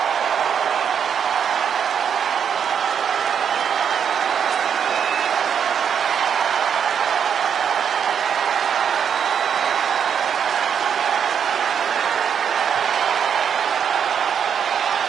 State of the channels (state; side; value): quieter; left; 7.7 dB